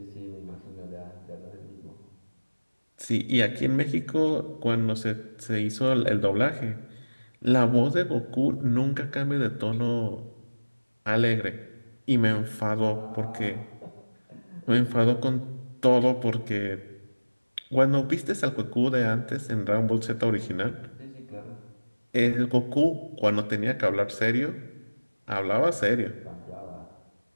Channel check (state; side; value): inverted; both; correlation -1.00